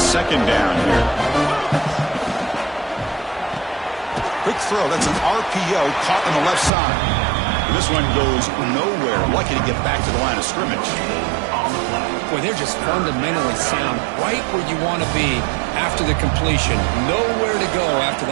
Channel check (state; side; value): drops out; left; at 6.7 s